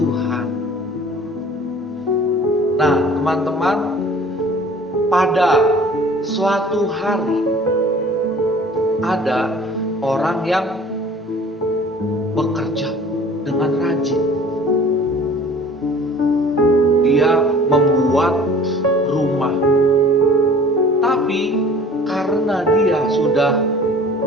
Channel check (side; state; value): both; normal; correlation 0.48